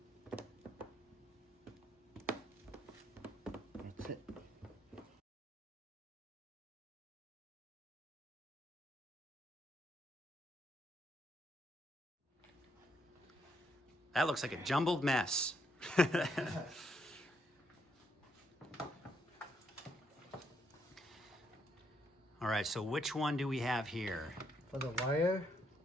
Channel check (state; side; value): normal; both; correlation 0.75